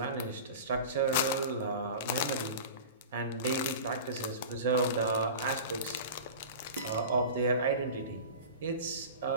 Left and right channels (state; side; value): inverted; both; correlation -0.34